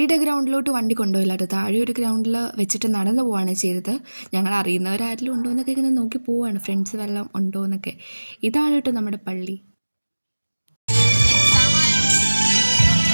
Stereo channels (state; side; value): inverted; both; correlation -1.00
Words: ഗ്രൗണ്ടിലോട്ട് വണ്ടി കൊണ്ടുപോയില്ല കേട്ടോ. താഴെ ഒരു ഗ്രൗണ്ടിൽ വെച്ചിട്ട് നടന്നു പോവുകയാണ് ചെയ്തത്. ഞങ്ങൾ അറിയുന്നവരാരെങ്കിലും ഉണ്ടോ എന്നൊക്കെ ഇങ്ങനെ നോക്കി പോവുകയാണ്, ഫ്രണ്ട്സ് വല്ലതും ഉണ്ടോ എന്നൊക്കെ. ഇതാണ് കേട്ടോ നമ്മുടെ പള്ളി.